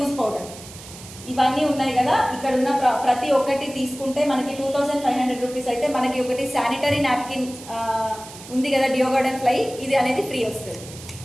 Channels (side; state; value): right; noise; hiss, 16 dB below the sound